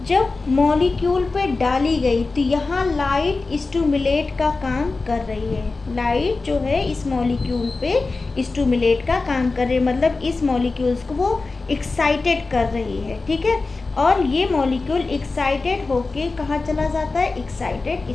जब मॉलिक्यूल पे डाली गई तो यहाँ लाइट स्टिमुलेट का काम कर रही है। लाइट जो है इस मॉलिक्यूल पे स्टिमुलेट का काम कर रही है, मतलब इस मॉलिक्यूल्स को वो एक्साइटेड कर रही है। ठीक है, और ये मॉलिक्यूल एक्साइटेड होके कहाँ चला जाता है? एक्साइटेड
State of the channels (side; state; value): right; quieter; 3.7 dB